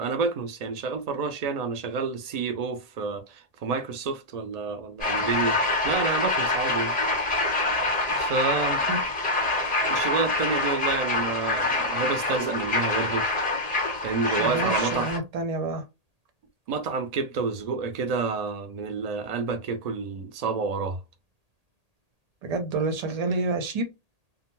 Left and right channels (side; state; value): left; late; 1.8 ms